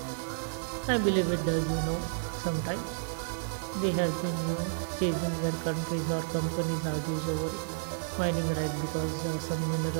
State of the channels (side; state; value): left; silent; digital silence